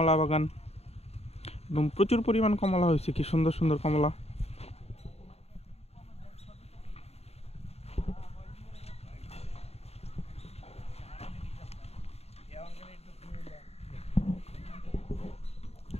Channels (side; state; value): right; late; 0.30 ms